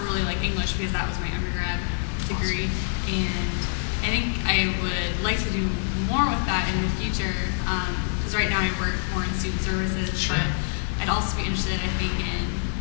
really like English because that was my undergrad degree, and I think I would like to do more with that in the future, because right now I work more in student services, Sure. but I'd also be interested, I think, in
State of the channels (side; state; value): right; silent; 61 dB below the other